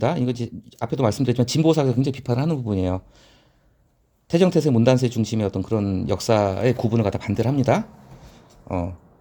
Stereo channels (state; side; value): identical; both; correlation 1.00